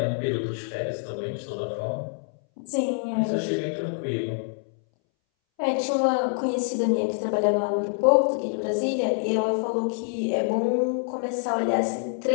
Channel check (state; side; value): silent; right; 61 dB below the other